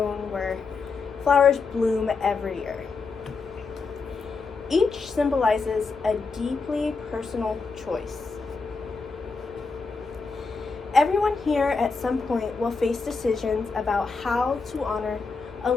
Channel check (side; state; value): right; quieter; 4.5 dB